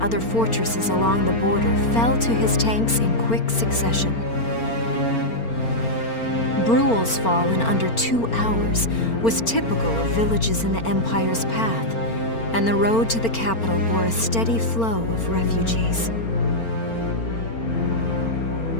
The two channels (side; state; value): right; late; 4.4 ms